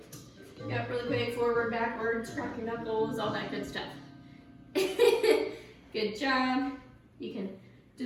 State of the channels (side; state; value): both; identical; correlation 1.00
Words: Yep, really quick, forward, backwards, crack your knuckles, all that good stuff. Good job. You can do